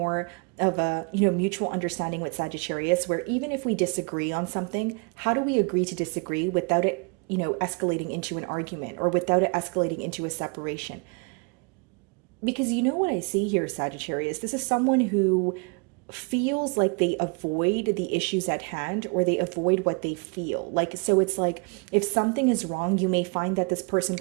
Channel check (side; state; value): left; quieter; 33.6 dB